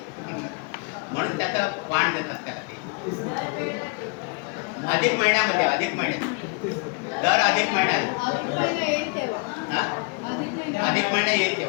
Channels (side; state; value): right; quieter; 34.2 dB